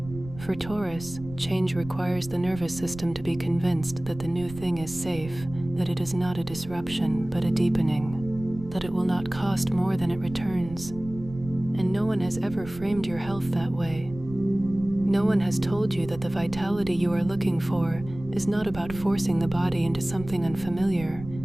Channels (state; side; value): noise; right; rumble, 14 dB below the sound